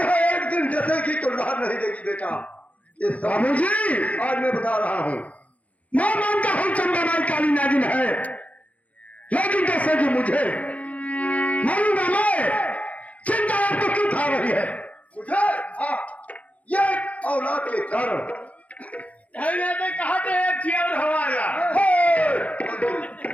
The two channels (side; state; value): right; late; 0.068 ms